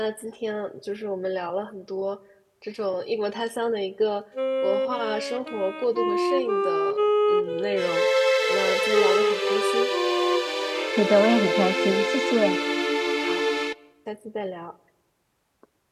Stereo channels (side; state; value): both; identical; correlation 1.00